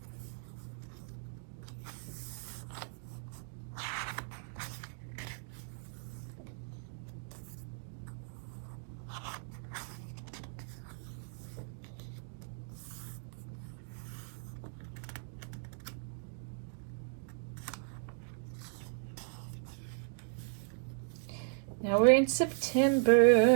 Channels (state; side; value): silent; left; digital silence